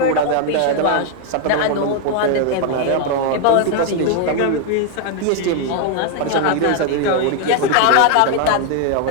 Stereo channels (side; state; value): both; different; correlation 0.01